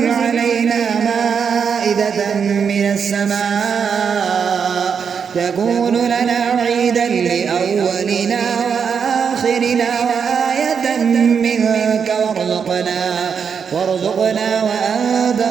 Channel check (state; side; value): quieter; left; 6.6 dB